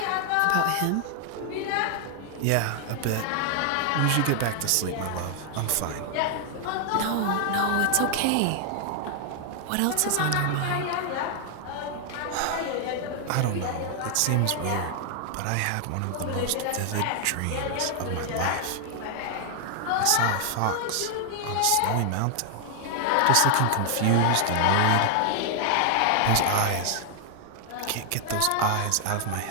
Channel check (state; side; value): different; both; correlation 0.00